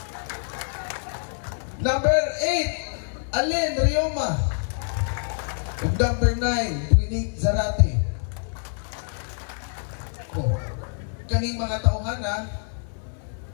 Number 8, Allen Rioma. And number 9, Trinit Zarate. Oh, kaning mga tauhana,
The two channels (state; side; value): silent; right; 61 dB below the other